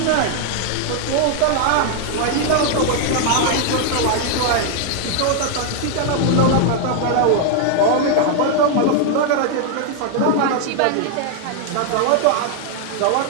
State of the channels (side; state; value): both; different; correlation 0.00